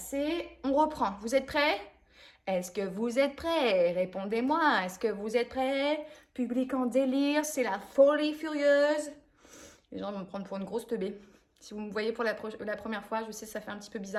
on reprend. Vous êtes prêts? Est-ce que vous êtes prêts? Répondez-moi. Est-ce que vous êtes prêts? Public en délire, c'est la folie furieuse. Les gens vont me prendre pour une grosse teubée. Si vous me voyez pour la première fois, je sais, ça fait un petit peu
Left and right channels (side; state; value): both; identical; correlation 1.00